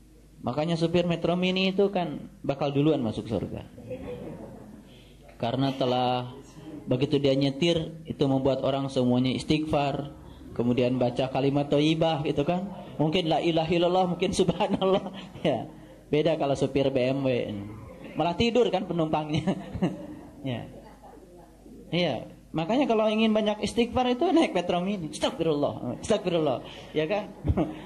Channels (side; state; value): both; identical; correlation 1.00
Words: Makanya supir Metro Mini itu kan bakal duluan masuk surga. Karena telah begitu dia nyetir, itu membuat orang semuanya istighfar. Kemudian baca kalimat thayyibah gitu kan. Mungkin la ilaha illallah, mungkin subhanallah. Ya. Beda kalau supir BMW. Malah tidur kan penumpangnya. Ya. Iya. Makanya kalau ingin banyak istighfar itu naik Metro Mini. Astagfirullah. Ya kan?